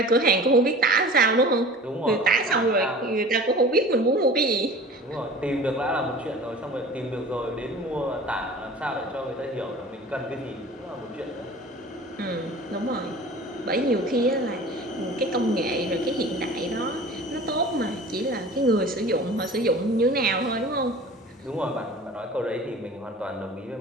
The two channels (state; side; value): normal; both; correlation 0.41